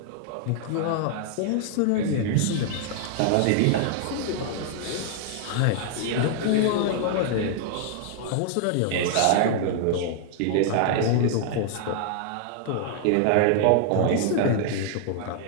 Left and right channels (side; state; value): both; different; correlation 0.00